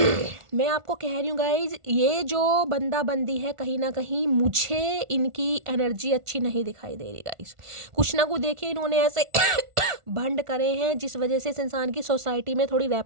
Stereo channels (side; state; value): left; late; 1.4 ms